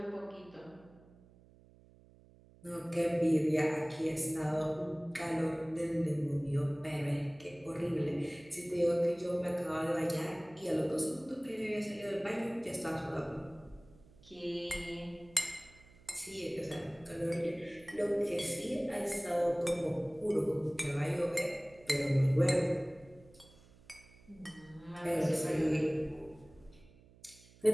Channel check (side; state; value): right; noise; hum, 25 dB below the sound